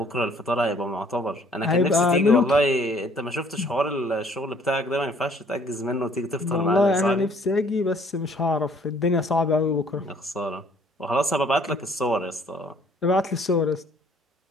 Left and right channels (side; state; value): both; normal; correlation 0.59